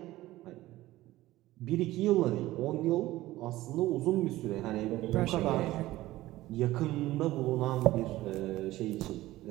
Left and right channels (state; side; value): quieter; left; 16.7 dB